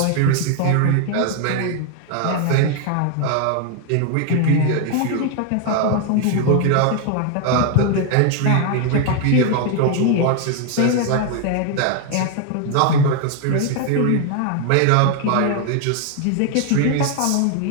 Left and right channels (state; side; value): different; both; correlation 0.01